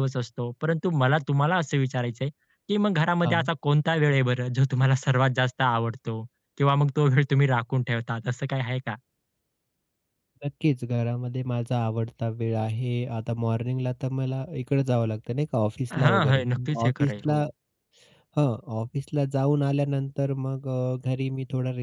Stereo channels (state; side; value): identical; both; correlation 1.00